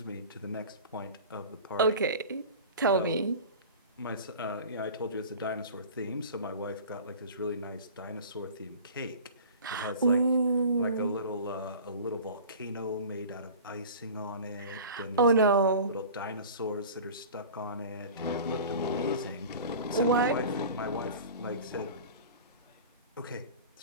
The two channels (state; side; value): inverted; both; correlation -0.39